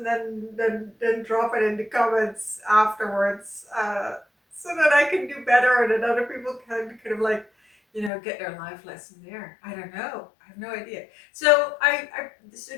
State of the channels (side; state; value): right; drops out; at 8.1 s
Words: then drop it in the comments afterwards, so that I can do better and that other people can kind of like, get their life lesson there. I don't know. I have no idea. So so